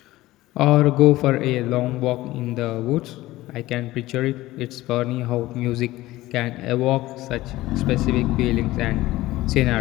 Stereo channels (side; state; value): right; quieter; 17.3 dB